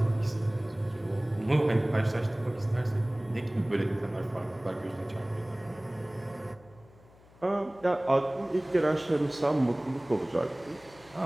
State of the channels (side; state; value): left; noise; hum, 26 dB below the sound